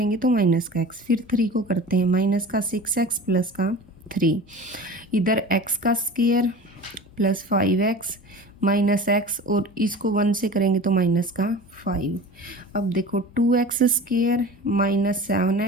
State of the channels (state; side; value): normal; both; correlation 0.37